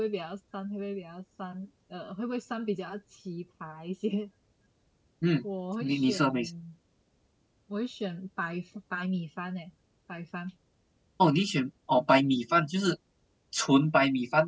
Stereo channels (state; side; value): identical; both; correlation 1.00